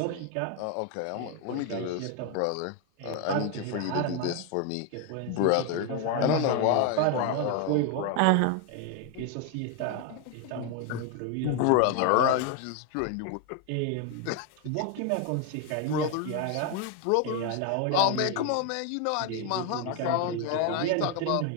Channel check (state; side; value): different; both; correlation 0.01